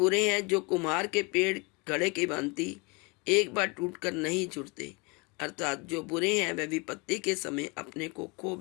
हैं जो कुम्हार के पेड़ घड़े की भांति एक बार टूटकर नहीं जुड़ते, अर्थात जो बुरे हैं वह विपत्ति के समय अपने को खो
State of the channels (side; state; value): right; quieter; 29.0 dB